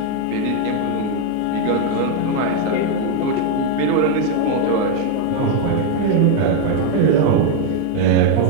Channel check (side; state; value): both; different; correlation 0.01